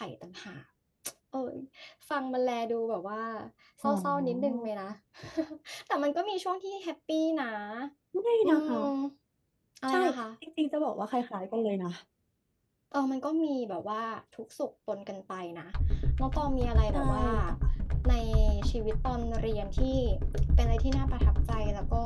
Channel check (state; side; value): identical; both; correlation 1.00